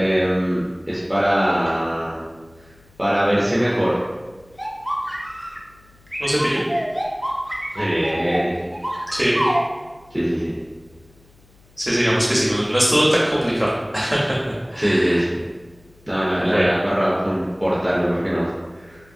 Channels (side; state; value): left; noise; hum, 29 dB below the sound